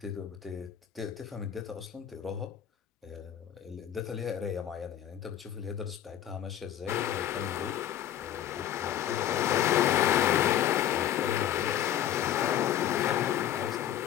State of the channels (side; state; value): right; quieter; 11.1 dB